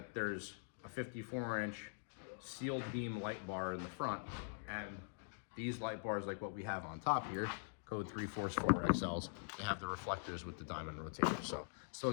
there's a 54-inch sealed beam light bar in the front, and these light bars like what we have on top here, code 344XLs, they have the reflectors with the diamond rotator. So still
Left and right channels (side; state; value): right; silent; digital silence